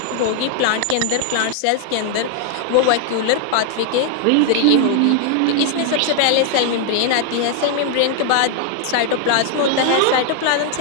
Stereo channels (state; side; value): different; both; correlation 0.00